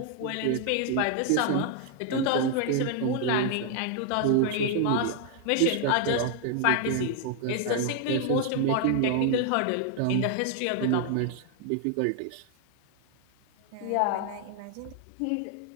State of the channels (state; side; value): different; both; correlation 0.00